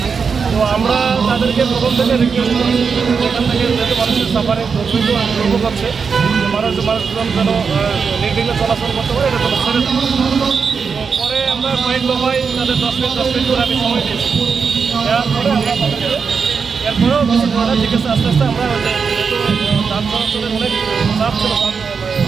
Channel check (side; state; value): left; quieter; 5.7 dB